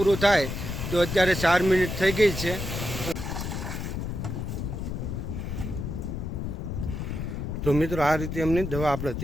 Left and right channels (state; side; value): noise; left; rumble, 4 dB below the sound